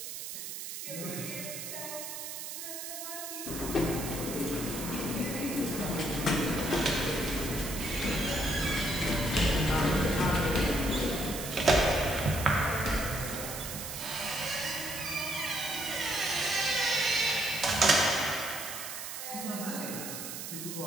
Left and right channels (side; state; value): right; noise; hiss, 7 dB below the sound